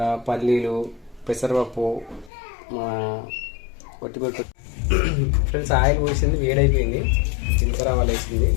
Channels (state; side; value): drops out; right; at 2.3 s